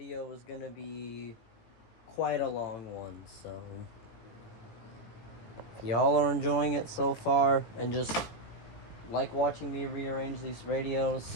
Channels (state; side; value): late; right; 17 ms